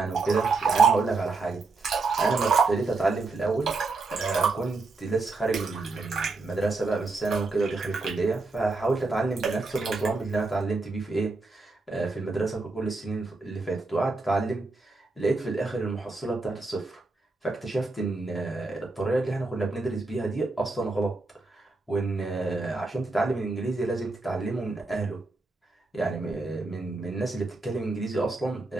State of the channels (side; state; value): left; quieter; 3.6 dB